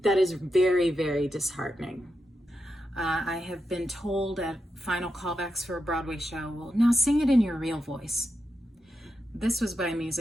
is very, very disheartening. I have been told at final callbacks for a Broadway show, well, now sing it in your real voice. This was by a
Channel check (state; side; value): normal; both; correlation 0.87